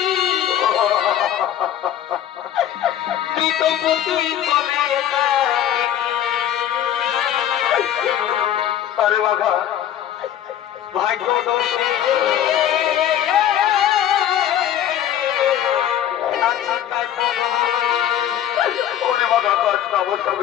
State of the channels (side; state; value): right; quieter; 11.0 dB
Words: আরে বাবা ভাগ্য দোষে ওরে বাবা কাজটা অবস্থা